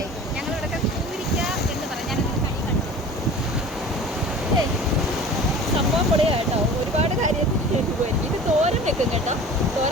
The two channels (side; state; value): both; normal; correlation 0.40